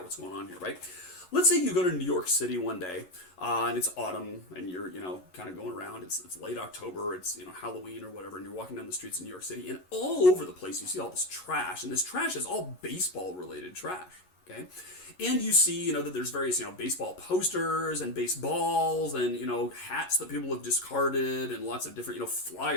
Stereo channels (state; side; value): late; right; 11 ms